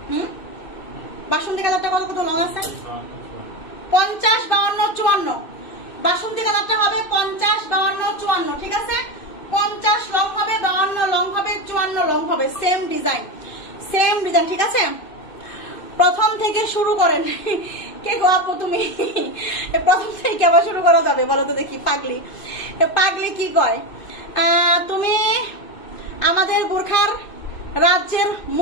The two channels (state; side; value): late; right; 2.6 ms